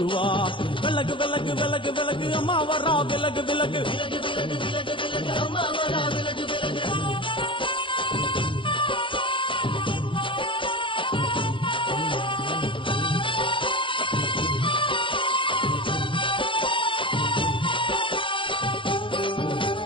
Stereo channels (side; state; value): right; late; 0.25 ms